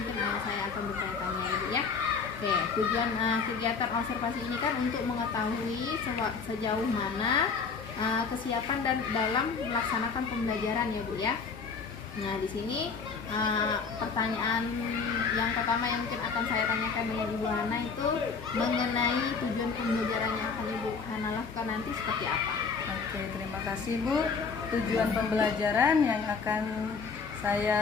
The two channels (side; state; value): right; quieter; 5.2 dB